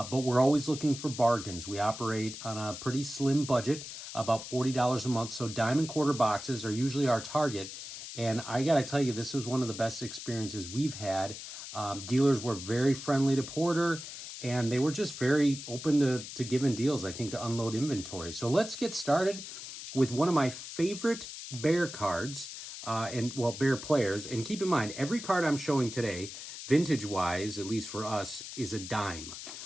we're always looking for bargains. We operate on a pretty slim budget, about $40 a month. So diamond quarter boxes are usually our target. And I got to tell you, this was one of the best experiences we've had. Dealers were very friendly to Porter, and they were just very open to giving deals, I think, to unload inventory. So let's get started with one of my favorite Bear cards, Bear players. And keep in mind, every card I'm showing today, vintage-wise, at least for us, is a dime.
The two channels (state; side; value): noise; left; hiss, 10 dB below the sound